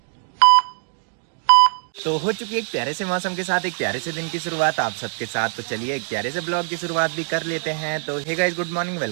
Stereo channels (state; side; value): silent; left; 64 dB below the other